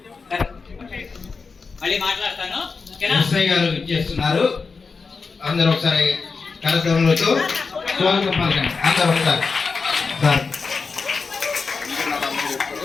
మళ్ళీ మాట్లాడతాను. ఎస్ఐ గారు ఇచ్చేస్తున్నారు. అందరూ ఒకసారి కార్యక్రమంలో స్వాగతం పలకండి. అందరూ ఒకసారి సార్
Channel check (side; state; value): right; quieter; 4.7 dB